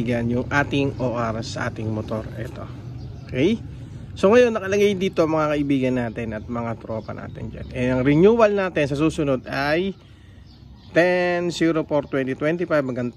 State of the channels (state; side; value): identical; both; correlation 1.00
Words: yung ating OR sa ating motor. Ito. Okay? So ngayon nakalagay dito mga kaibigan natin at mga tropa natin dyan. Ang renewal natin sa susunod ay 10/04/2025 hanggang